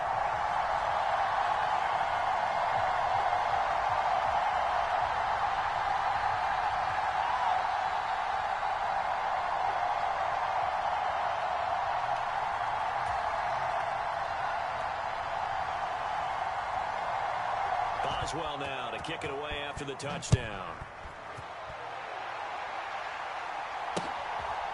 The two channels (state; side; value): identical; both; correlation 1.00